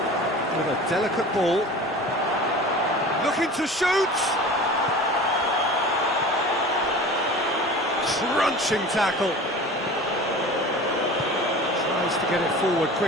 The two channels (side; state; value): both; normal; correlation 0.38